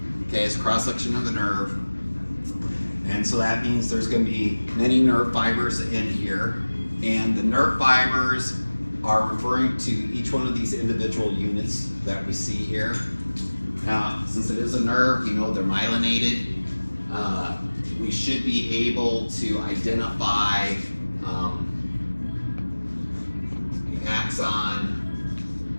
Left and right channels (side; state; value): both; inverted; correlation -1.00